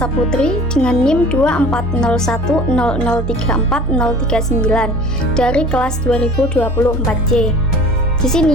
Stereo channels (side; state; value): both; normal; correlation 0.44